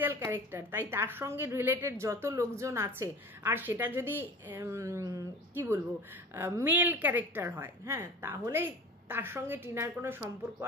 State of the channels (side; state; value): both; normal; correlation 0.37